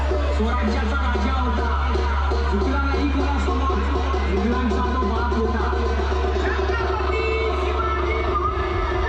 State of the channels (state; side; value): identical; both; correlation 1.00